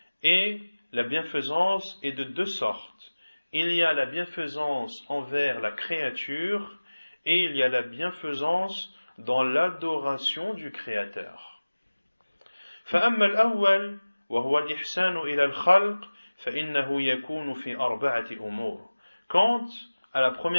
Et la bienfaisance est de deux sortes. Il y a la bienfaisance envers la créature et il y a la bienfaisance dans l'adoration du Créateur. فأما الأول وهو الإحسان إلى الخلق فإنه يكون في أربعة أمور. Quant à la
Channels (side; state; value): both; inverted; correlation -1.00